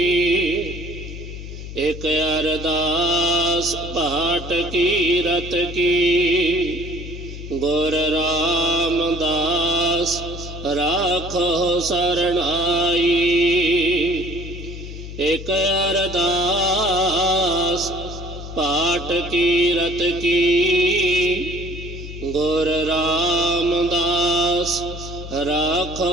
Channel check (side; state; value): left; noise; hum, 10 dB below the sound